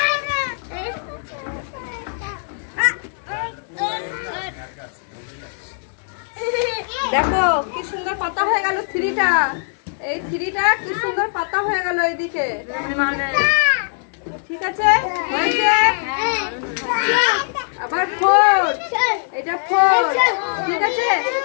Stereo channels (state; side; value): silent; right; digital silence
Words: দেখো কি সুন্দর পাতা হয়ে গেল থ্রিটা, এই থ্রিটা কি সুন্দর পাতা হয়ে গেল এইদিকে, ঠিক আছে? হয়েছে। আবার 4, এটা 4, ঠিক আছে?